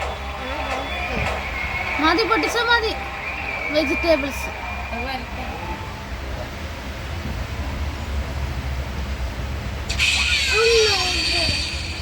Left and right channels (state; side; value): identical; both; correlation 1.00